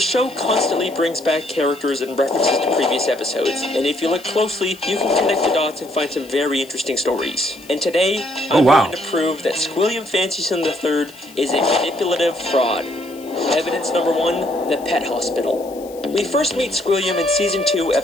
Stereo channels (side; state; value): left; noise; hiss, 22 dB below the sound